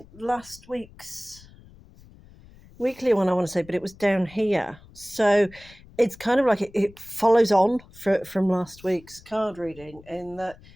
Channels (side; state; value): left; noise; rumble, 23 dB below the sound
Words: last week's weekly one, I want to say, but it was down here. So it's kind of like it follows on from last week's card reading, in that